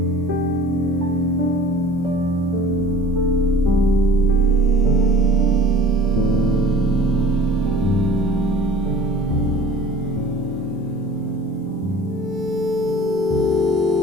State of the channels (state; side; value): normal; both; correlation 0.46